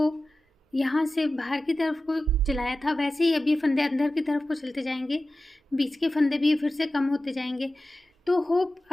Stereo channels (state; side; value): normal; both; correlation 0.95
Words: यहाँ से बाहर की तरफ को चलाया था वैसे ही अब ये फंदे अंदर की तरफ को चलते जाएंगे, बीच के फंदे भी फिर से कम होते जाएंगे। तो होप